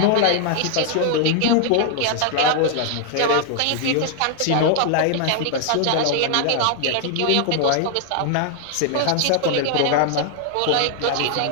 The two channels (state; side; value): different; both; correlation 0.00